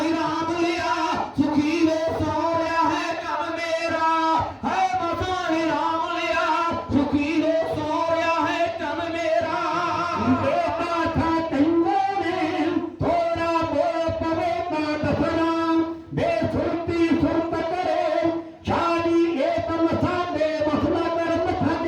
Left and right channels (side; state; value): both; identical; correlation 1.00